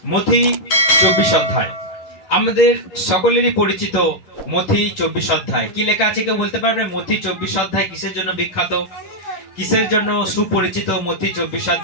মথি 24 অধ্যায়। আমাদের সকলেরই পরিচিত মথি 24 অধ্যায়। কি লেখা আছে কেউ বলতে পারবে? মথি 24 অধ্যায় কিসের জন্য বিখ্যাত, কিসের জন্য সুপরিচিত? মথি 24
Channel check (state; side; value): late; right; 10 ms